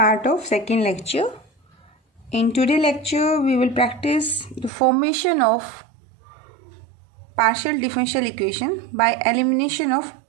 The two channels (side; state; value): left; drops out; at 4.7 s